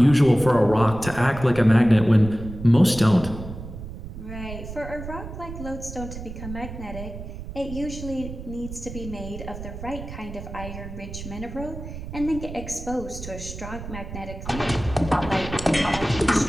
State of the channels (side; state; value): right; noise; rumble, 10 dB below the sound